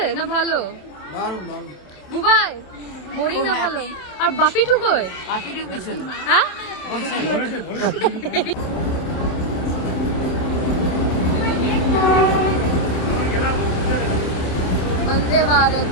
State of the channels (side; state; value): right; late; 27 ms